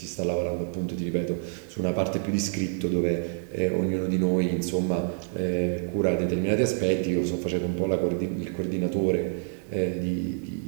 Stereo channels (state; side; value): silent; left; digital silence